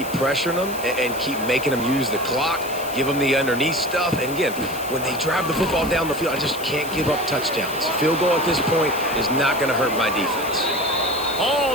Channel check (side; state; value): left; noise; hiss, 13 dB below the sound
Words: pressuring them and keep making them use the clock, give them the underneath stuff. And again, when they drive the football down the field, I just can't give up touchdowns. Field goal at this point is not going to hurt my defense. All